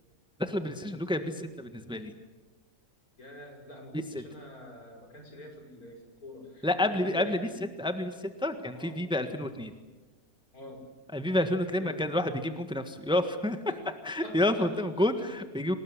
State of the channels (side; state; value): both; normal; correlation 0.58